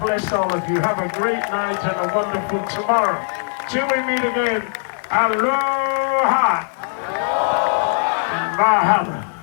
bless all of you. Have a great night and a wonderful tomorrow. Till we meet again, aloha and mahalo.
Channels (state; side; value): silent; right; 66 dB below the other